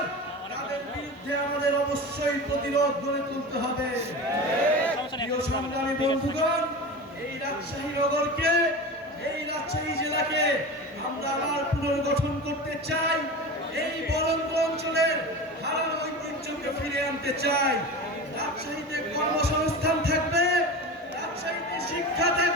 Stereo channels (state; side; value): normal; both; correlation 0.29